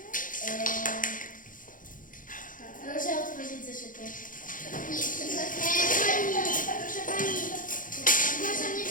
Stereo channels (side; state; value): right; late; 0.39 ms